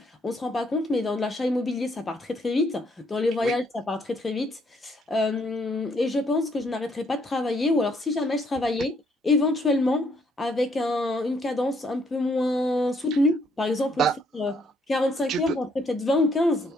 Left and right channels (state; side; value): normal; both; correlation 0.70